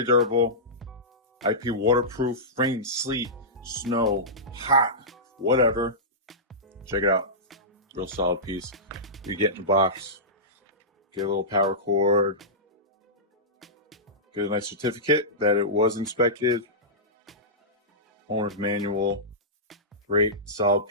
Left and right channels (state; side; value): normal; both; correlation -0.16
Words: durable. IP waterproof, rain, sleet, snow, hot, whatever. Check it out. Real solid piece. You get in the box, get a little power cord, get a nice certificate that it was inspected, owner's manual, great solid